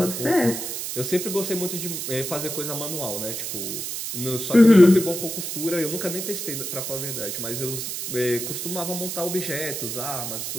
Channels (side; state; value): right; noise; hiss, 5 dB below the sound